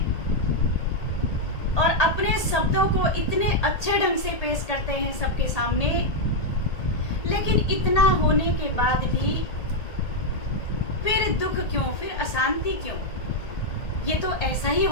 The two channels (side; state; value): right; late; 1.8 ms